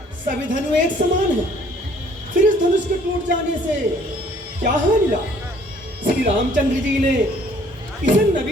सभी धनु एक समान है, फिर इस धनुष के टूट जाने से क्या हानि मिला? श्री रामचंद्र जी ने इसे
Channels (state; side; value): normal; both; correlation 0.59